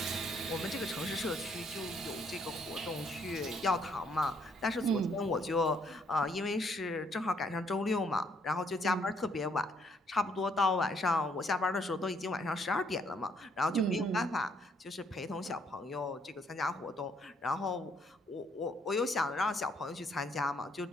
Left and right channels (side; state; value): both; normal; correlation 0.69